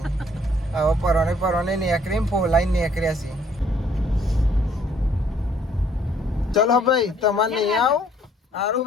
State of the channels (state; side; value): normal; both; correlation 0.63